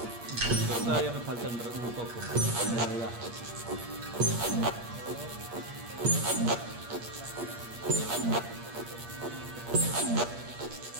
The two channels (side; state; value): left; late; 8.5 ms